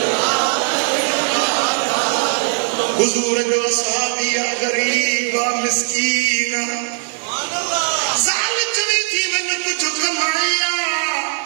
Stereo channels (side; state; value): left; silent; 56 dB below the other